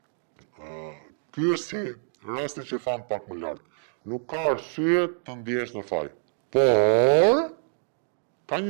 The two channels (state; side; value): silent; left; digital silence